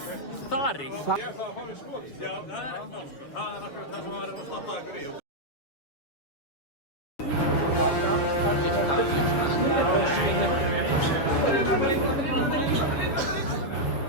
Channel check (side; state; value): right; late; 7.1 ms